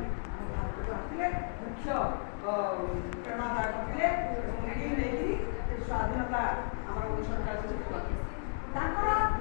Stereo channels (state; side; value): silent; right; digital silence